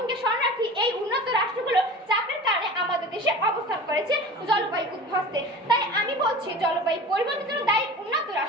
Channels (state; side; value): normal; both; correlation 0.36